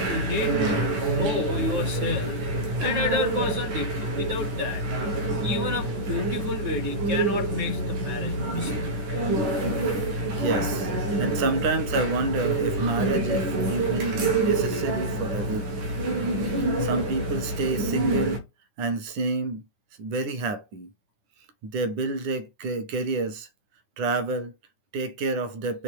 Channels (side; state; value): left; late; 9.7 ms